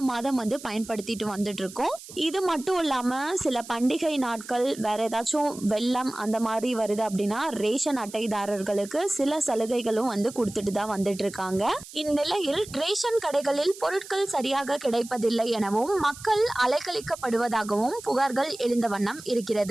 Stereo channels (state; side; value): noise; right; hiss, 16 dB below the sound